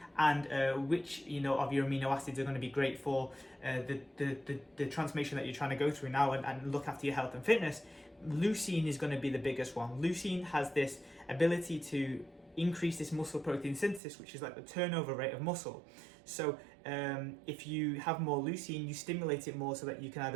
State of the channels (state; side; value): drops out; left; at 14.0 s